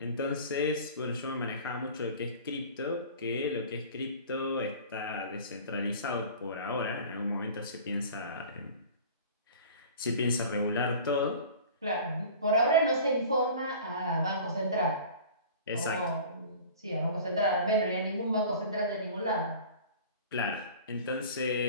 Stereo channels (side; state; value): both; inverted; correlation -0.42